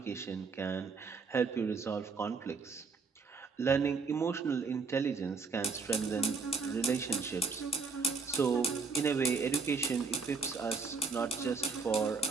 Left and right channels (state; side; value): quieter; left; 4.6 dB